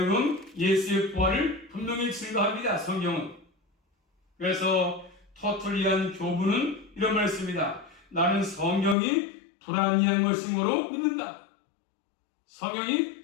예수의 부활을 분명히 증거합니다. 성경은. 그래서 터툴리안 교부는 이런 말씀입니다. 나는 성경이 불아니한 것인 거로 믿는다.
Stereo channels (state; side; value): drops out; right; at 9.0 s